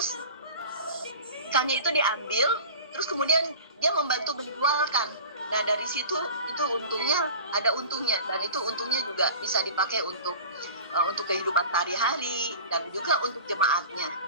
ikannya itu diambil, terus kemudian dia membantu menjualkan. Nah, dari situ itu untungnya, ada untungnya, dan itu untungnya juga bisa dipakai untuk kehidupan sehari-hari dan juga untuk jemaatnya,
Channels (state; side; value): inverted; both; correlation -0.37